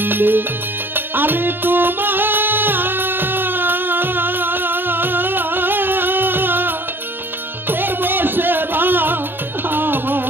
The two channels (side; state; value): left; late; 0.097 ms